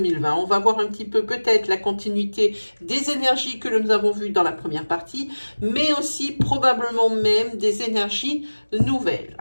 On va voir un petit peu peut-être la continuité des énergies que nous avons vues dans la première partie, mais aussi probablement même des énergies nouvelles.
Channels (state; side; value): inverted; both; correlation -1.00